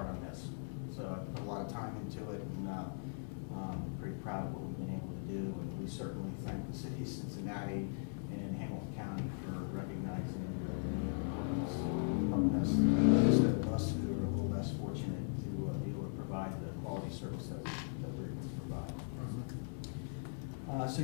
on this. So I put a lot of time into it, and pretty proud of what we've been able to do. And we certainly thank the city of Cincinnati and Hamilton County for recognizing the importance of helping us, those of us who are a little less fortunate to be able to provide the quality service that we're able to provide. So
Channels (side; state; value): right; silent; 52 dB below the other